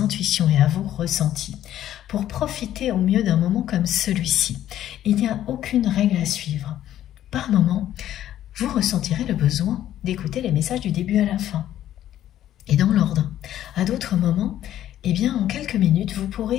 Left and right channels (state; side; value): quieter; right; 12.1 dB